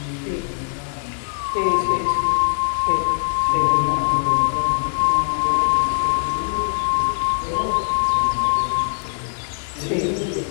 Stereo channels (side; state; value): right; silent; digital silence